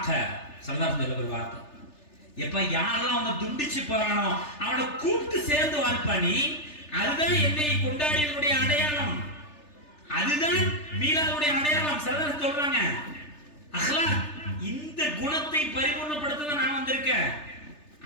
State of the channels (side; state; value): right; late; 3.3 ms